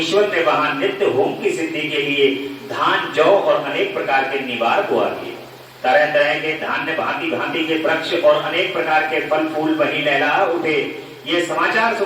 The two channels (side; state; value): both; identical; correlation 1.00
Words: ने वहां नित्य होम की सिद्धि के लिए धान, जौ और अनेक प्रकार के निवार को दिए। तरह तरह के धान्य, भांति भांति के वृक्ष और अनेक प्रकार के फल फूल वहीं लहला उठे। ये समाचार